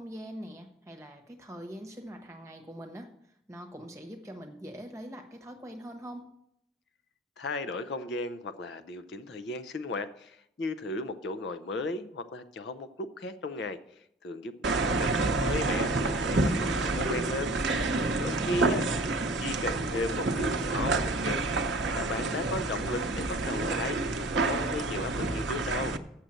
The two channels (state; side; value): normal; both; correlation 0.42